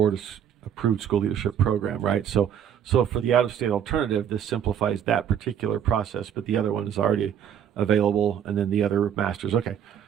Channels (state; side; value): quieter; left; 9.0 dB